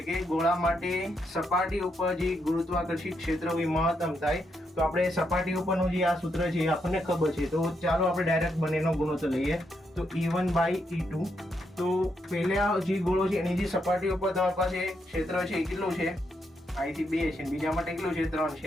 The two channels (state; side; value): normal; both; correlation 0.79